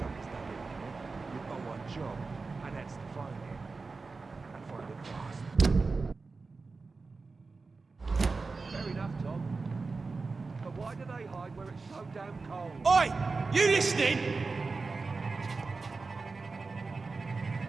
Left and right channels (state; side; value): quieter; left; 4.1 dB